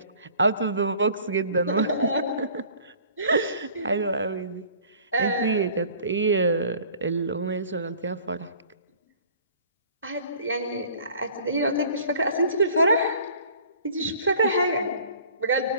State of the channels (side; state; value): both; inverted; correlation -0.50